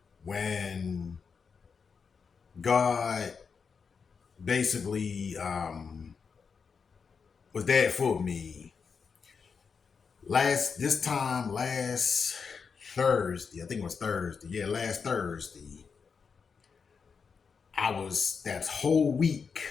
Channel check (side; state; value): right; quieter; 5.7 dB